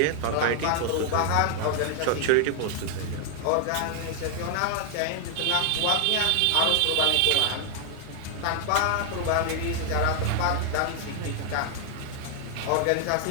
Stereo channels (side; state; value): both; different; correlation 0.00